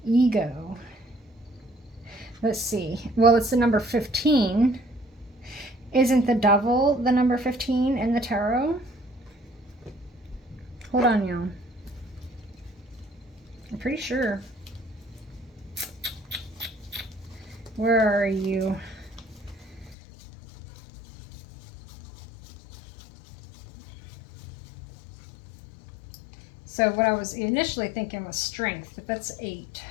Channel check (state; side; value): drops out; right; at 20.0 s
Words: ego. Let's see. Well, it's the number 15. Isn't the devil the number 15 in the tarot? Hold on, y'all. I'm pretty sure. Where are you? So what I was initially thinking was strength, but that's 8.